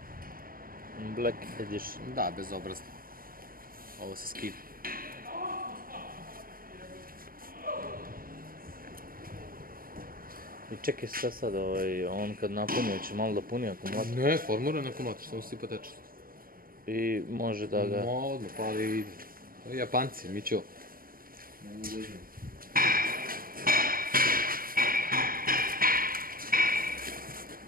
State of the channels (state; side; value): late; left; 0.42 ms